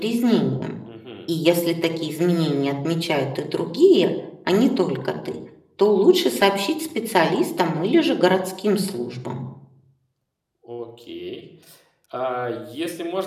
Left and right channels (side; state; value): both; identical; correlation 1.00